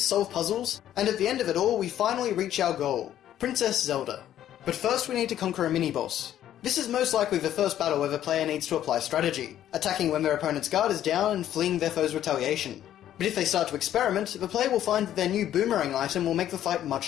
solve puzzles, and at the end of it all we finally reach our goal, Princess Zelda. But first we need to conquer a mini-boss. This is most likely the first battle where the player needs to apply strategy, attacking when their opponent's guard is down and fleeing their foe's retaliation. But if they start to experiment, the player will find that their new boomerang item will make the fight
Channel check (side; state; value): right; quieter; 11.6 dB